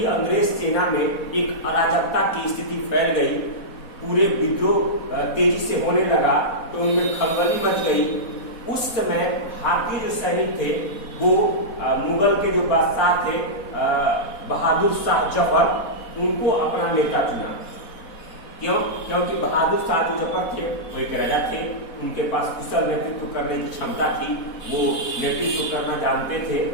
अंग्रेज सेना में एक अराजकता की स्थिति फैल गई, पूरे विद्रोह तेजी से होने लगा, तो उनमें खलबली मच गई। उस समय भारतीय जो सैनिक थे वो मुगल के जो बादशाह थे बहादुर शाह जफर, उनको अपना नेता चुना। क्यों? क्योंकि बहादुर शाह जो जफर थे वो एक राजा थे, उनके पास कुशल नेतृत्व करने की क्षमता थी, वो नेतृत्व करना जानते थे।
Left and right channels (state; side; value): late; right; 4.1 ms